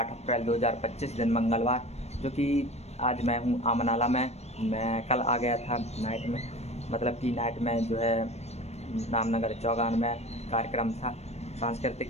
अप्रैल 2025 दिन मंगलवार, जो कि आज मैं हूँ आमनाला में। मैं कल आ गया था नाइट में, मतलब कि नाइट में जो है रामनगर चौगान में कार्यक्रम था,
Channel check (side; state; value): right; late; 0.31 ms